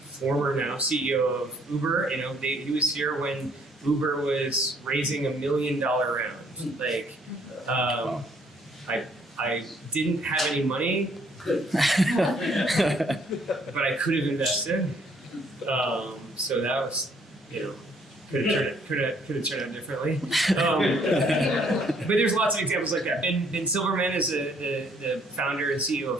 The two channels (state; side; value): normal; both; correlation 0.64